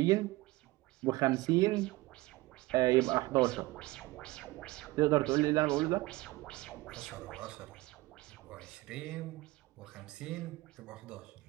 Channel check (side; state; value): left; quieter; 19.9 dB